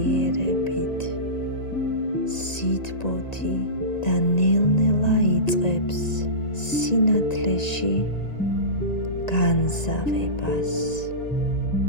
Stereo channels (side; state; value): right; late; 1.9 ms